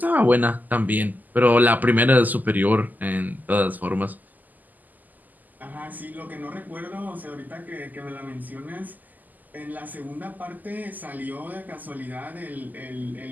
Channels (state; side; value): late; left; 0.083 ms